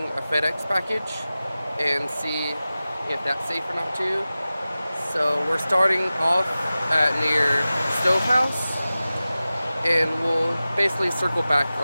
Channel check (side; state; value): both; inverted; correlation -0.96